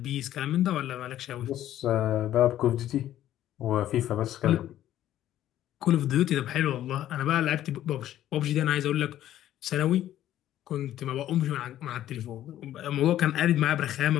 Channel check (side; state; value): right; quieter; 12.5 dB